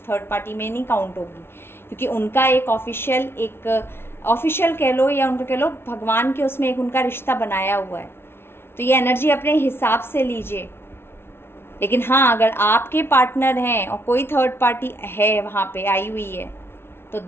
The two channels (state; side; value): late; right; 0.12 ms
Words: थर्ड पार्टी में नहीं काउंट होगी, क्योंकि उनका एक ऑफिशियल कह लो या उनको कह लो भगवान के उसमें एक उनका रिश्ता बनाया हुआ है। तो ये एनर्जी अपने हिसाब से लीजिए। लेकिन हाँ, अगर आपके पार्टनर हैं और कोई थर्ड पार्टी है वहाँ पे आई हुई है, तो